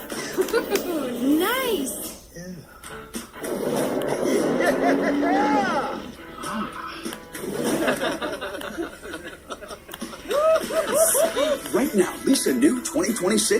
Nice. Right now, lease a new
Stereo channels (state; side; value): identical; both; correlation 1.00